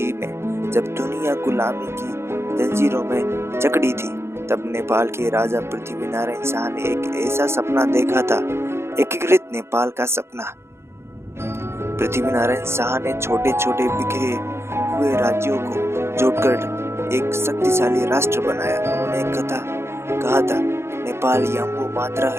में जब दुनिया गुलामी की जंजीरों में जकड़ी थी, तब नेपाल के राजा पृथ्वीनारायण शाह ने एक ऐसा सपना देखा था, एकीकृत नेपाल का सपना। पृथ्वीनारायण शाह ने छोटे छोटे बिखरे हुए राज्यों को जोड़कर एक शक्तिशाली राष्ट्र बनाया। उन्होंने कहा था, नेपाल यम्बो मात्रा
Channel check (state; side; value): late; left; 0.12 ms